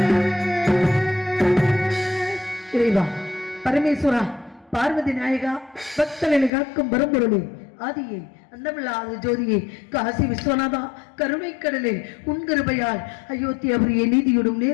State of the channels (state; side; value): drops out; right; at 6.5 s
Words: இறைவா பரமேஸ்வரா பார்வதி நாயகா பக்தர்களை காக்கும் பரம்பொருளே ஆதியே அன்னமில்லாத ஜோதியே காசி விஸ்வநாதா கருணை கடலே உன் கிருபையால் அயோத்தியாபுரியை நீதியோடும்